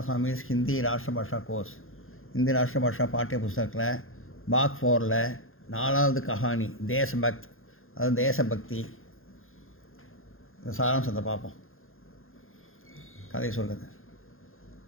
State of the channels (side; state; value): right; late; 0.60 ms